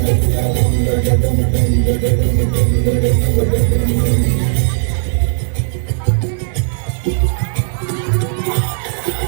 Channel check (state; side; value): silent; left; digital silence